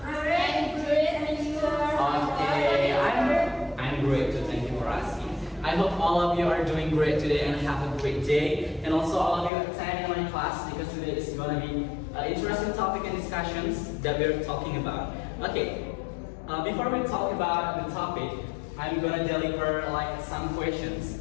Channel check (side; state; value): right; drops out; at 9.5 s